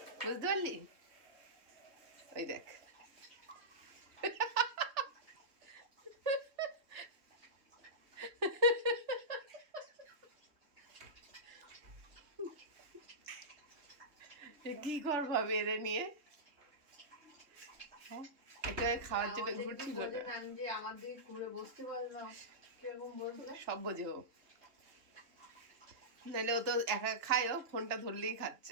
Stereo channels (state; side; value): late; left; 3.4 ms